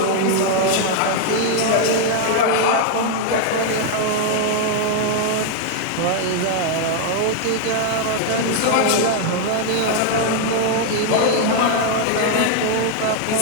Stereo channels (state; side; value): different; both; correlation 0.00